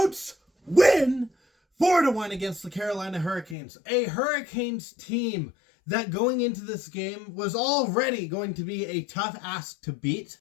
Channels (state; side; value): drops out; right; at 3.6 s